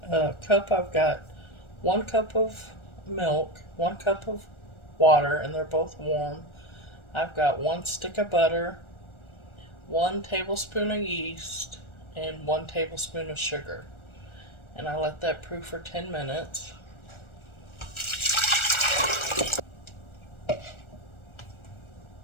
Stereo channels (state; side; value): late; right; 1.4 ms